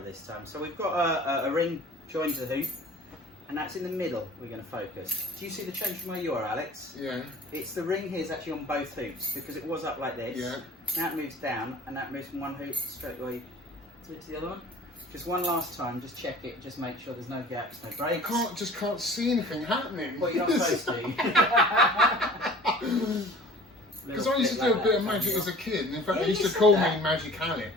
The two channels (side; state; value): both; normal; correlation 0.45